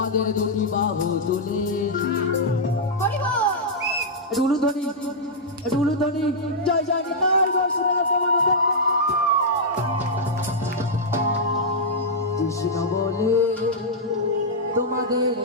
দুটি বাহু তুলে উলুধ্বনি উলুধ্বনি জয় জয় নিতাই কৃষ্ণ বলে তোমাদের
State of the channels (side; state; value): both; normal; correlation -0.08